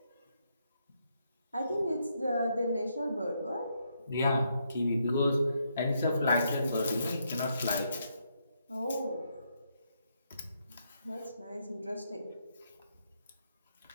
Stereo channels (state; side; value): inverted; both; correlation -0.78